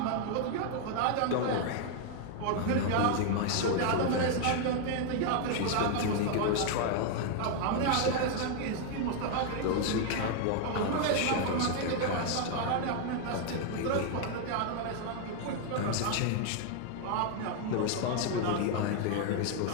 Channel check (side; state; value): both; different; correlation 0.00